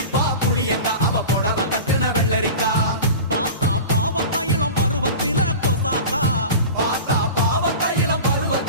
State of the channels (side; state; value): both; inverted; correlation -0.33